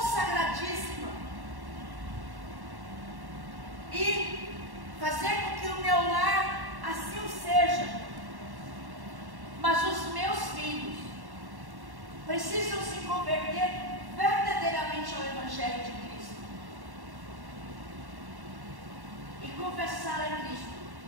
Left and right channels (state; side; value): late; left; 1.1 ms